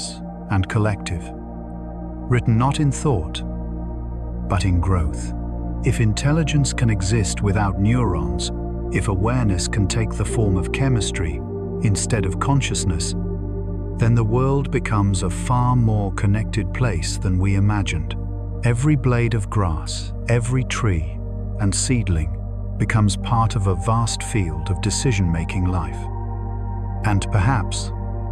and collective, written not in thought, but in growth. If intelligence can exist without neurons, if awareness can take the form of chemistry instead of consciousness, then the world becomes a far more connected place than we imagined. Every blade of grass, every tree and seedling becomes part of a vast field of decision-making life. And perhaps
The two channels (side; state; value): both; identical; correlation 1.00